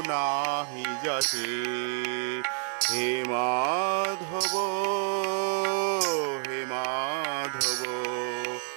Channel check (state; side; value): silent; left; 59 dB below the other